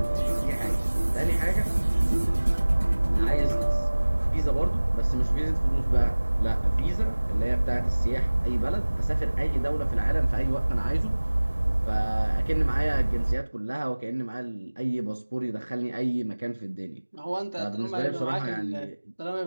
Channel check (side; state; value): both; inverted; correlation -1.00